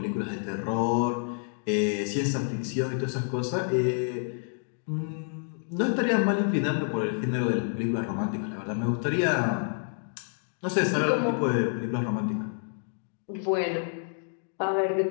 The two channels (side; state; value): right; silent; 59 dB below the other